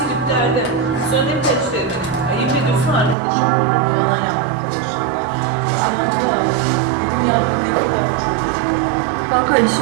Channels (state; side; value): drops out; left; at 3.2 s